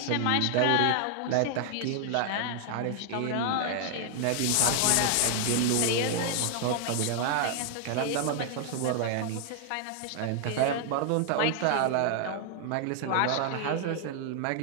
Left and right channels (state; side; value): different; both; correlation 0.00